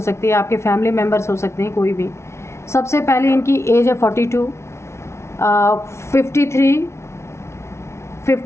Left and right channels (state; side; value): late; right; 0.13 ms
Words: सकती है, आपके फैमिली मेम्बर्स हो सकते हैं, कोई भी। सबसे पहले इनकी एज है 42, 53,